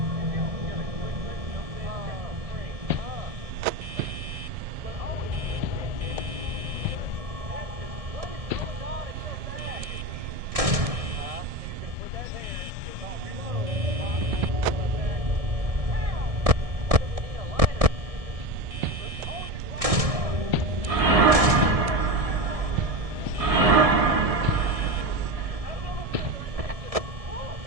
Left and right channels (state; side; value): late; left; 1.7 ms